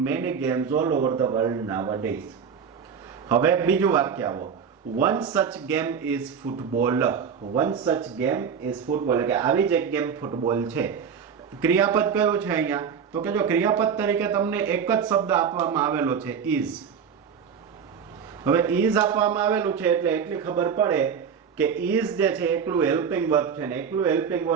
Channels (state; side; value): quieter; left; 7.0 dB